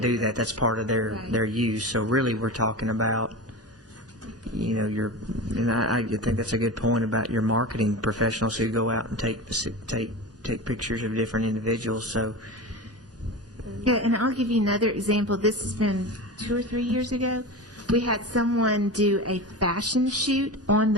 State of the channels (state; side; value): normal; both; correlation 0.27